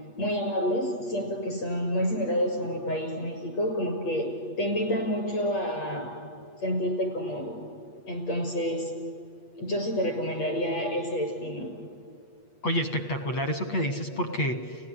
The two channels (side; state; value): right; late; 8.4 ms